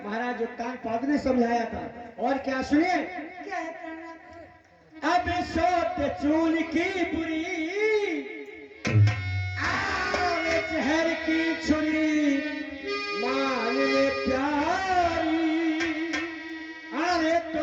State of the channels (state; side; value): identical; both; correlation 1.00